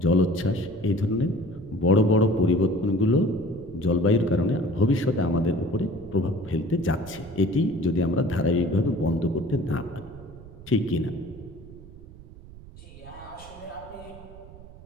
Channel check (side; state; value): right; noise; rumble, 18 dB below the sound